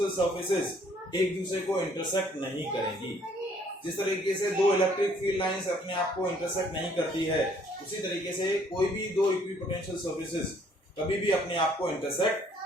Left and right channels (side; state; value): both; normal; correlation 0.62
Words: सर्फेसेस एक दूसरे को इंटरसेक्ट नहीं करेंगी। जिस तरीके से दो इलेक्ट्रिक फील्ड लाइंस अपने आप को इंटरसेक्ट नहीं करती है, उसी तरीके से कोई भी दो इक्विपोटेंशियल सर्फेसेस कभी भी अपने आप को इंटरसेक्ट